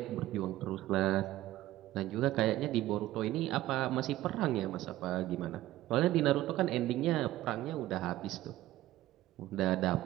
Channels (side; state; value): left; quieter; 15.4 dB